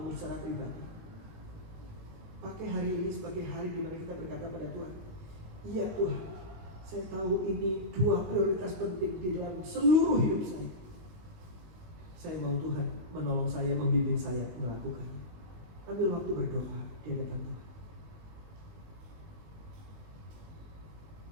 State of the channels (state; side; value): late; left; 19 ms